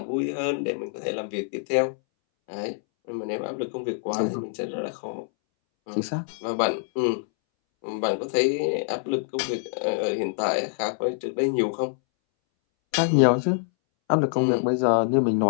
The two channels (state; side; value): silent; right; 61 dB below the other